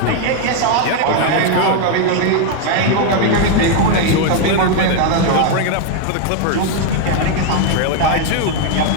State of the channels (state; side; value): different; both; correlation 0.01